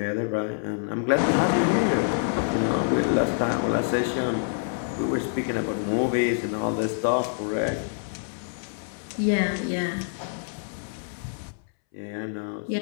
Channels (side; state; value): right; silent; 61 dB below the other